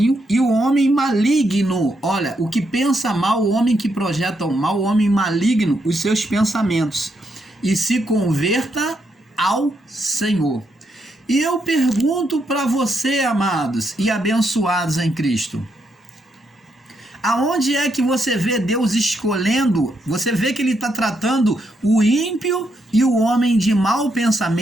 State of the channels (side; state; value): both; normal; correlation 0.79